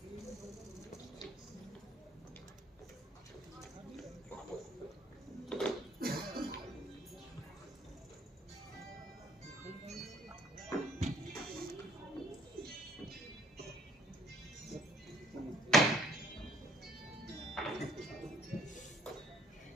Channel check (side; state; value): both; normal; correlation 0.60